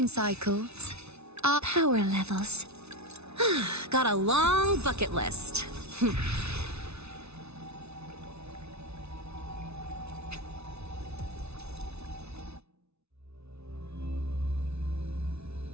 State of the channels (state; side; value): late; left; 0.80 ms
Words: cycles, our Power levels. got a long bucket list.